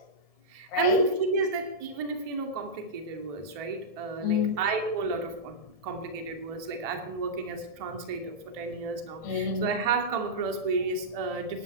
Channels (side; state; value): left; late; 1.7 ms